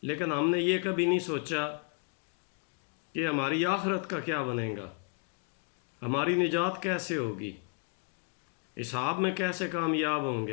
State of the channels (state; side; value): quieter; right; 36.4 dB